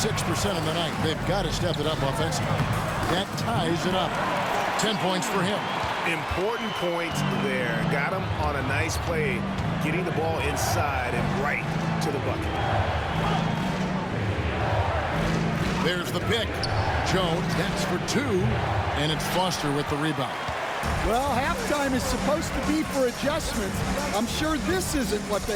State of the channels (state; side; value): identical; both; correlation 1.00